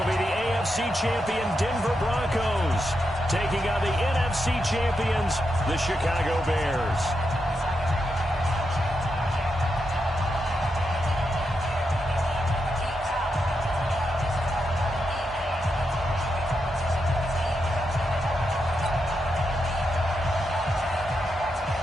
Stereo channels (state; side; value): normal; both; correlation 0.85